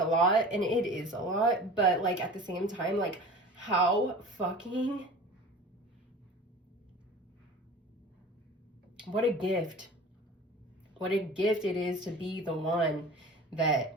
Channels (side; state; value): both; normal; correlation 0.39